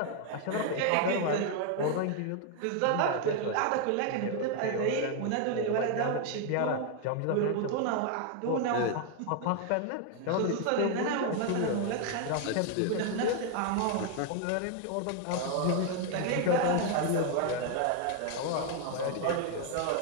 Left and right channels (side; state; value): both; different; correlation 0.00